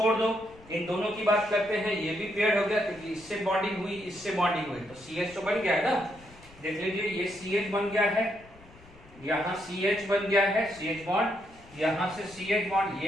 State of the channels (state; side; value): noise; left; rumble, 23 dB below the sound